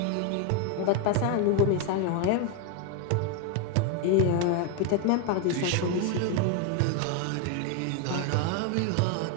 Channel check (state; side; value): different; both; correlation 0.01